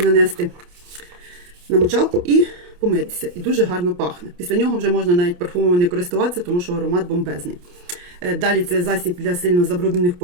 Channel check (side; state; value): left; late; 28 ms